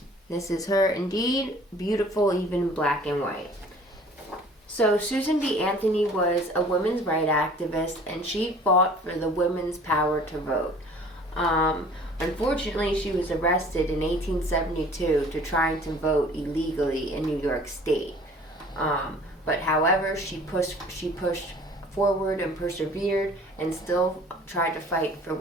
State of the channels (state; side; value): normal; both; correlation 0.50